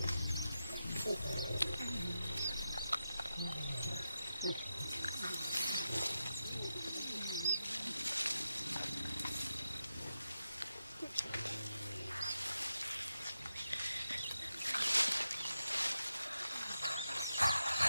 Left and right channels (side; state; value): both; inverted; correlation -0.88